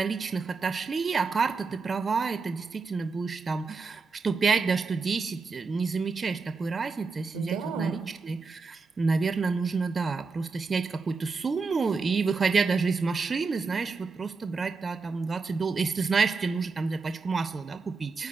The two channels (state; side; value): quieter; left; 4.5 dB